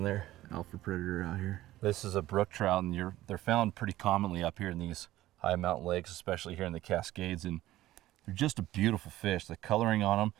there. Alpha predator out here. This is a brook trout, and they're found pretty commonly up here in these high mountain lakes, especially here in the Cascades, and they're just a beautiful fish. The coloring on them,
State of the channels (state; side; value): quieter; left; 15.3 dB